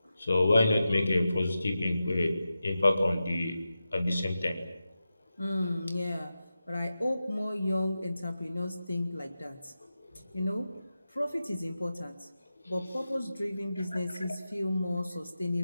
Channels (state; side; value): inverted; both; correlation -0.92